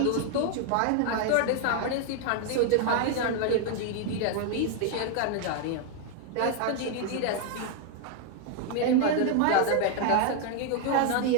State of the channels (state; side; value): different; both; correlation 0.00